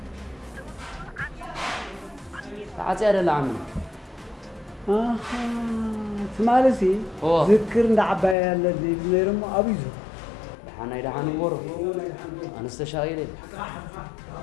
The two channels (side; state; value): right; drops out; at 8.3 s